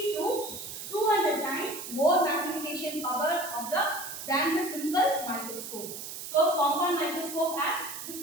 to 200 times more magnification power of than the simple microscope. So compound microscope has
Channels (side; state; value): right; noise; hiss, 9 dB below the sound